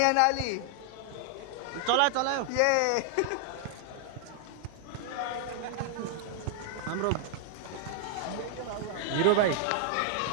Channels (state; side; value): different; both; correlation -0.01